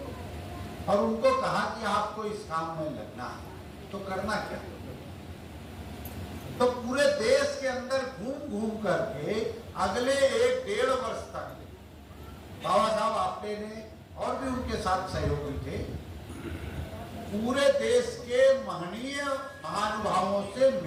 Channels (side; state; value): both; identical; correlation 1.00